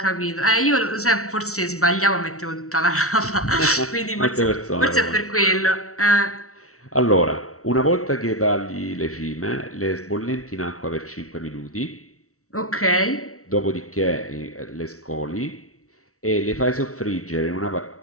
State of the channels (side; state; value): right; late; 0.64 ms